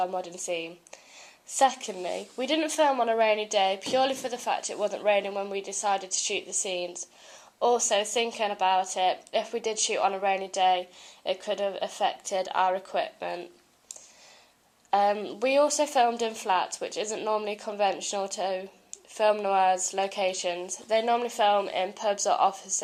modern theme. Secondly, we didn't film on a rainy day purely for the fact it wasn't raining when we decided to shoot the scenes. Also, thinking about it, if we did shoot on a rainy day, it could have affected our equipment. We also filmed in flats, which isn't normally conventional to film noirs locations. They normally film in pubs or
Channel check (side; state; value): both; identical; correlation 1.00